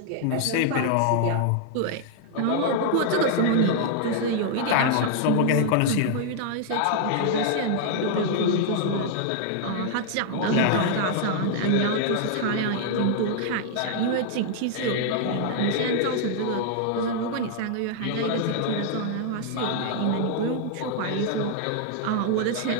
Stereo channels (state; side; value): different; both; correlation -0.01